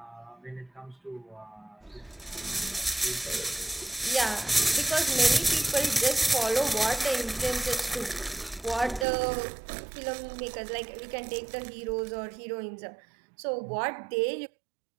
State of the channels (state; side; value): drops out; left; at 9.1 s